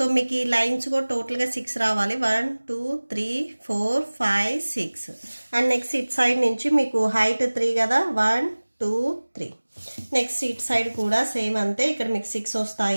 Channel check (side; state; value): both; inverted; correlation -1.00